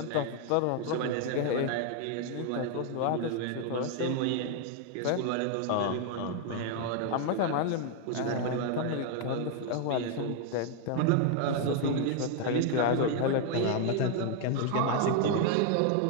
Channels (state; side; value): different; both; correlation 0.00